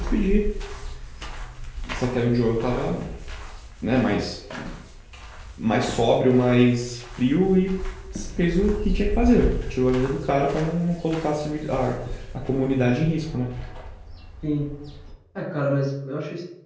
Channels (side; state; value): both; identical; correlation 1.00